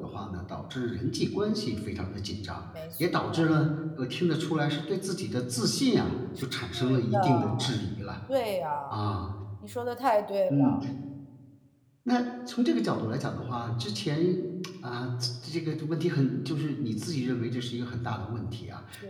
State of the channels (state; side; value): identical; both; correlation 1.00